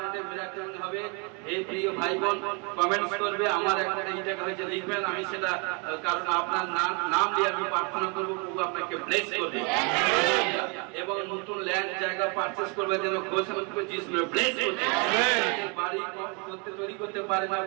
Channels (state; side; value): quieter; left; 33.4 dB